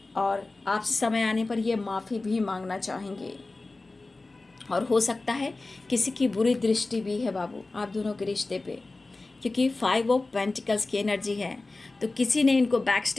और आपसे समय आने पर ये माफ़ी भी मांगना चाहेंगे, और हो सकता है किसी की बुरी दृष्टि भी है बाबू आप दोनों के रिश्ते पे, क्योंकि 5 ऑफ पेंटिकल्स की एनर्जी है। तो किसी ने इनको बैक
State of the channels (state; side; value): quieter; right; 3.3 dB